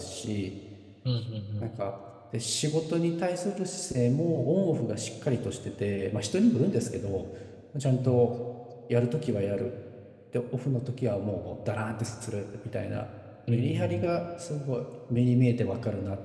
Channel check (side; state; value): both; identical; correlation 1.00